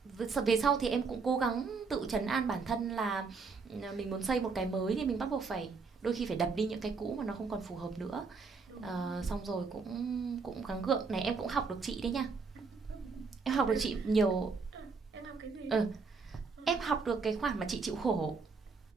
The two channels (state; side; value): quieter; left; 4.7 dB